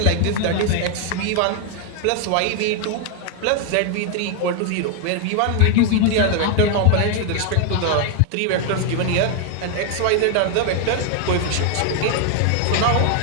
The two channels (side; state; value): both; different; correlation 0.00